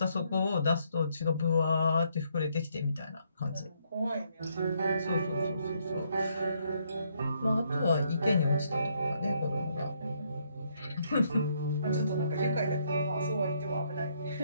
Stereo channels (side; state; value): both; inverted; correlation -0.72